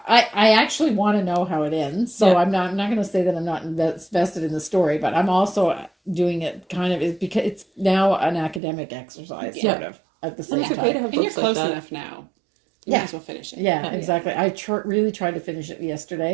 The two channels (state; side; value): drops out; left; at 8.6 s